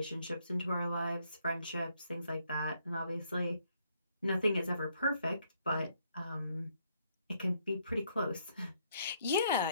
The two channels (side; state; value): both; inverted; correlation -0.71